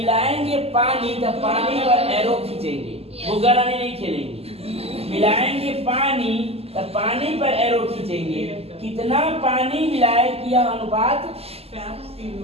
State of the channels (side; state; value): left; late; 0.29 ms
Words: पानी, तो पानी पर एरो खींचेंगे। गोगा रानी नहीं खेलेंगे। मिलाएंगे पानी तो पानी पर एरो खींचेंगे। कितना पानी मिलाए कि यह अनुपात